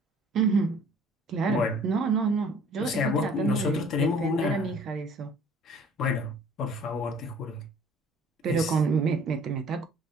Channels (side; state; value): both; normal; correlation 0.53